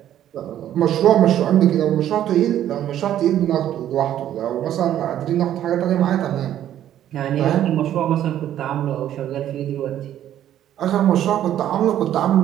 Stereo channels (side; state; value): left; quieter; 11.5 dB